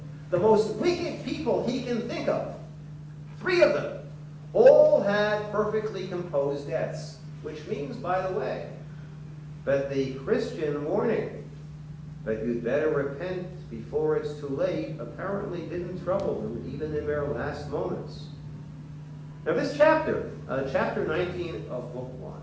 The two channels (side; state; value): both; identical; correlation 1.00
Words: The most wicked people he can think of, 3 of them, all had perfectly composed deaths, which means, by the way, that the Christian warning that you'd better repent before it's too late apparently didn't trouble them even in their last moments. Now this chapter, chapter 19 of Book 1,